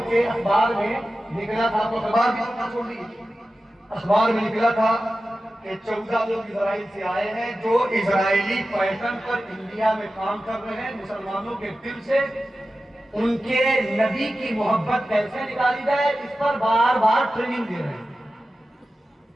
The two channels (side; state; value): both; normal; correlation 0.94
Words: کے اخبار میں نکلا تھا، تو اخبار بھی چھوڑ دیجیے، اخبار میں نکلا تھا کہ 14 لوگ اسرائیل سے آئے ہیں جو اسرائیلی پیٹرن پر انڈیا میں کام کر رہے ہیں، مسلمانوں کے دل سے ان کے نبی کی محبت کیسے نکالی جائے اس پر بار بار ٹریننگ دے رہے ہیں۔